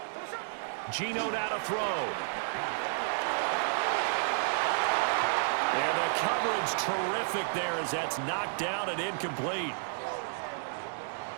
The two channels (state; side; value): silent; left; digital silence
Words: Geno now to throw. And the coverage terrific there as that's knocked down and incomplete.